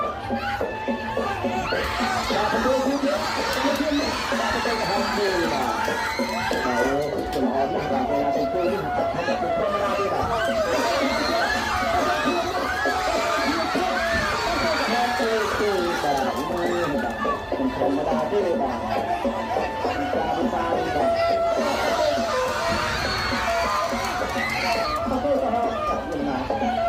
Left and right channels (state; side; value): identical; both; correlation 1.00